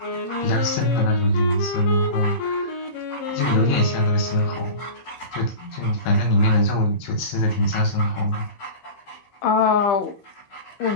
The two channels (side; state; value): right; late; 15 ms